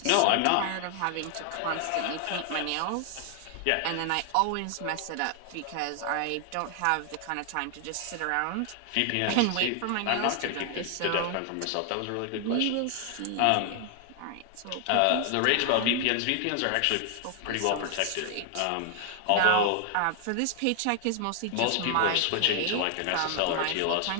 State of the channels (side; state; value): both; different; correlation 0.00